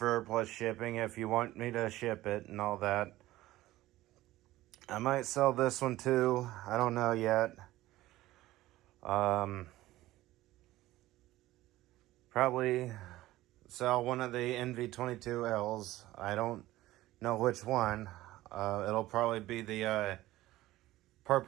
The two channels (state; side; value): quieter; left; 16.4 dB